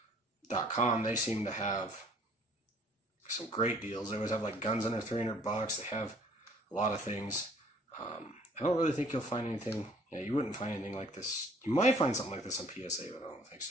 They seem to have some great deals. They always have like guns under $300. They have a lot of things. I don't really think you'll find anything. Yeah, you wouldn't find anything like this. You might find something like this on PSA, but I don't think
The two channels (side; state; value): both; normal; correlation 0.57